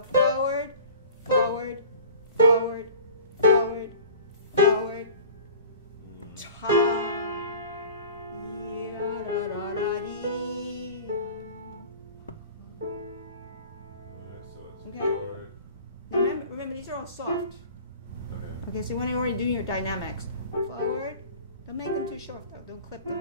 forward, forward, forward, forward, forward. Top. Remember, these are all soft. Okay, so when you're already doing your dynamics, forward, don't make them too short though. Don't clip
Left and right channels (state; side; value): inverted; both; correlation -0.43